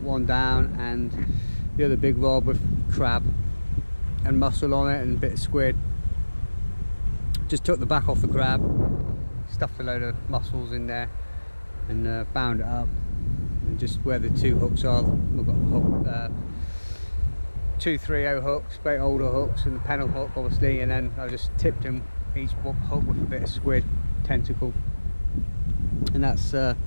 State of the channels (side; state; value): both; inverted; correlation -1.00